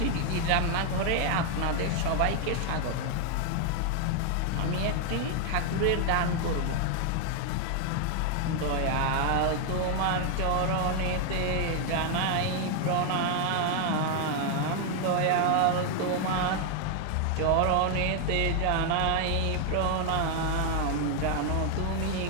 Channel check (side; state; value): both; different; correlation 0.00